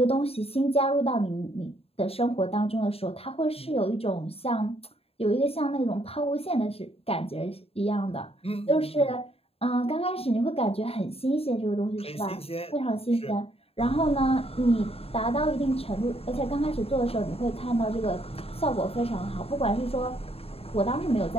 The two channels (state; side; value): late; right; 0.28 ms